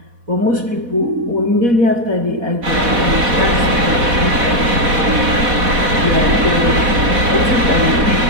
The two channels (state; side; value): late; left; 4.1 ms